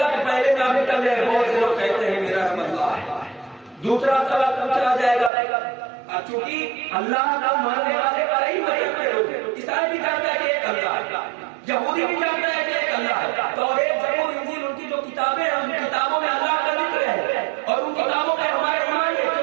کہ پہلے نام نکل جائے، بہت سے لوگ کہتے ہیں میرا رب اللہ ہے۔ دوسرا سوال پوچھا جائے گا، چونکہ اللہ کا ماننے والے کئی مذہب کے لوگ ہیں، عیسائی بھی جانتا ہے کہ ایک اللہ ہے، یہودی بھی جانتا ہے کہ ایک اللہ ہے، توریت، زبور، انجیل، ان کی جو کتابیں ہیں ان کتابوں میں اللہ کا ذکر ہے، اور ان کتابوں پہ ہمارا ایمان ہے،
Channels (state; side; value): drops out; left; at 5.3 s